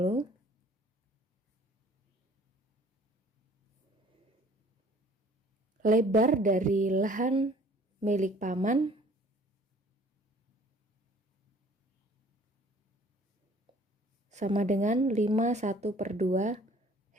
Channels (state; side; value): normal; both; correlation 0.54